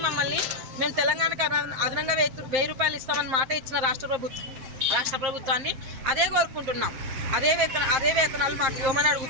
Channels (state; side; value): late; left; 7.6 ms